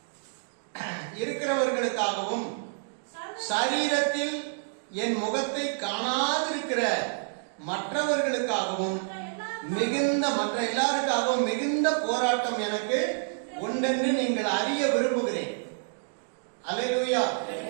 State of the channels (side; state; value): left; silent; digital silence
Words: இருக்கிறவர்களுக்காகவும் சரீரத்தில் என் முகத்தை காணாதிருக்கிற மற்றவர்களுக்காகவும் மற்ற எல்லாருக்காகவும் மிகுந்த போராட்டம் எனக்கு உண்டென்று நீங்கள் அறிய விரும்புகிறேன். அல்லேலூயா.